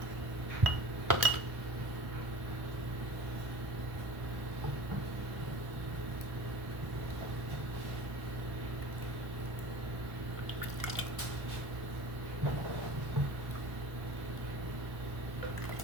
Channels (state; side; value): late; left; 1.1 ms